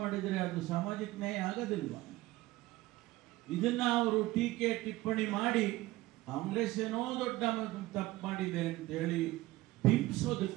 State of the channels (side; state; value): left; quieter; 18.2 dB